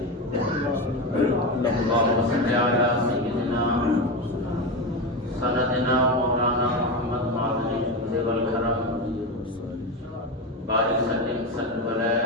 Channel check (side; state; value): both; normal; correlation 0.18